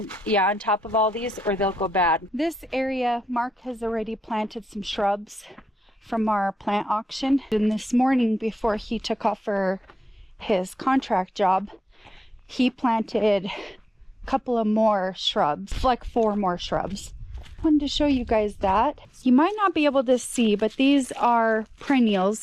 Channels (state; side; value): normal; both; correlation 0.90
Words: top of all these, or they'll go bad. This area, Mark has already planted some shrubs from our plant auction. And this morning, before he took off for his contract job, he planted a couple of more shrubs, like 4 more shrubs. I wanted to show you guys that. You might not be able to see, but these are